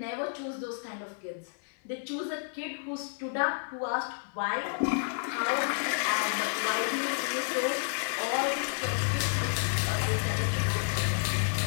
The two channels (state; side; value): silent; right; digital silence